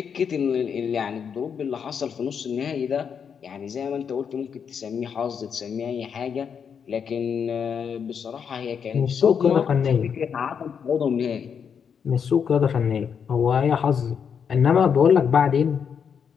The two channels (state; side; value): quieter; right; 7.1 dB